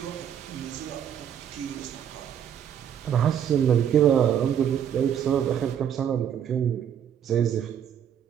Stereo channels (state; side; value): quieter; left; 9.1 dB